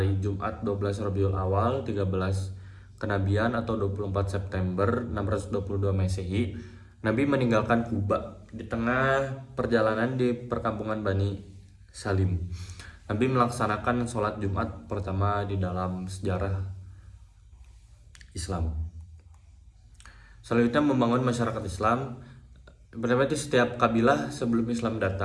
Jumat 12 Rabiul Awal 13 kenabian atau 24 September 622 Masehi, Nabi meninggalkan Kuba di tengah perjalanan di perkampungan Bani Salim. Nabi melaksanakan sholat Jumat pertama di dalam sejarah Islam. Selanjutnya membangun masyarakat Islam. Berarti setiap kabilah sebelum Islam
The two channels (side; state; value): both; identical; correlation 1.00